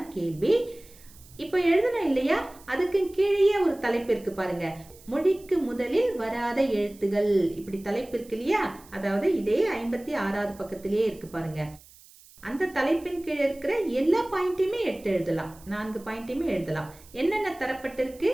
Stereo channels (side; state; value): right; noise; hiss, 24 dB below the sound